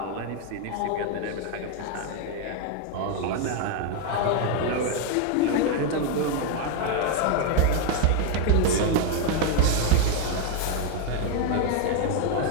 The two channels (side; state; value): both; different; correlation 0.01